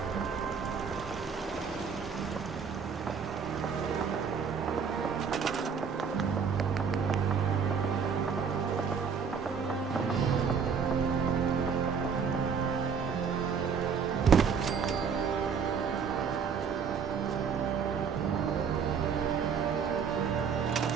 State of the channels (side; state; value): left; quieter; 6.4 dB